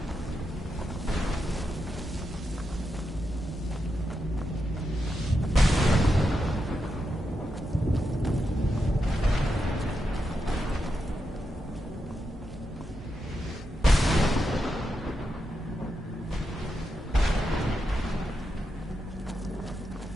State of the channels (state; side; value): normal; both; correlation 0.86